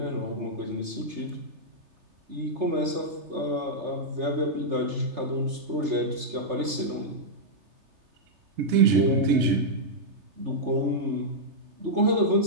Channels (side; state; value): left; late; 3.3 ms